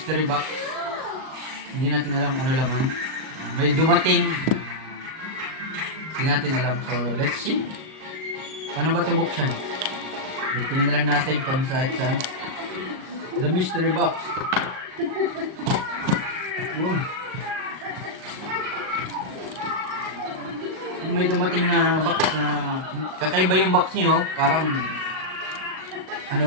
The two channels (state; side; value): late; left; 38 ms